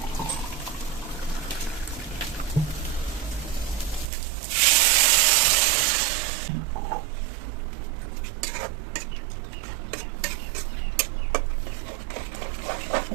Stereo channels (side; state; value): left; drops out; at 4.1 s